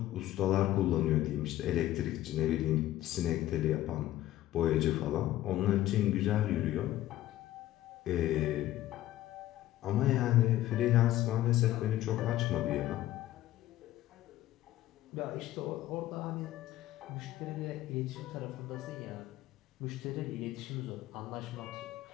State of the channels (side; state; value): right; quieter; 14.5 dB